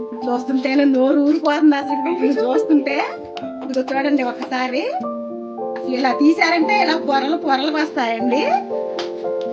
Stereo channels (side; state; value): both; identical; correlation 1.00